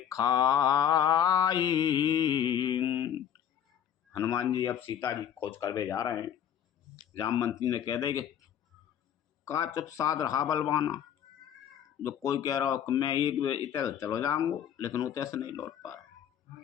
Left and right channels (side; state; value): right; quieter; 9.5 dB